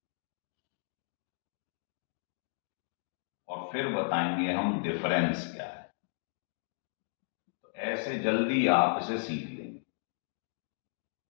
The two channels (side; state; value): right; silent; digital silence